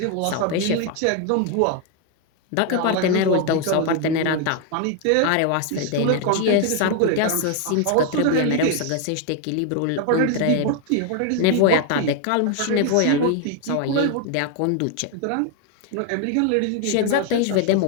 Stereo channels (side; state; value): both; different; correlation 0.00